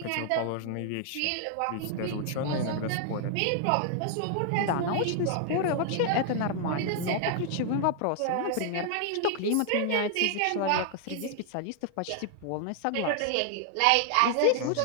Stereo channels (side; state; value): both; different; correlation 0.00